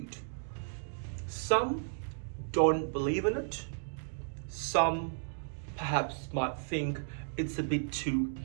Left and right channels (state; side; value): silent; left; digital silence